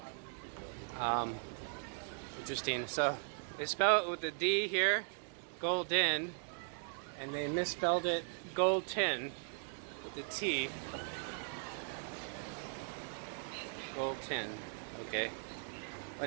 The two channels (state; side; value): silent; left; 52 dB below the other